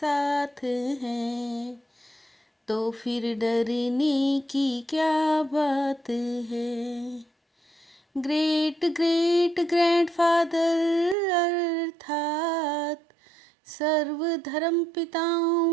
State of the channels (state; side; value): drops out; left; at 11.2 s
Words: हैं तो फिर डरने की क्या बात है। ग्रेट ग्रेट ग्रैंडफादर अर्थात सर्व धर्म